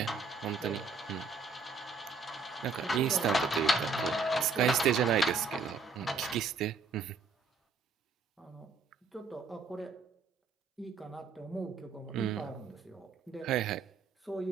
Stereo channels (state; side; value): quieter; left; 4.2 dB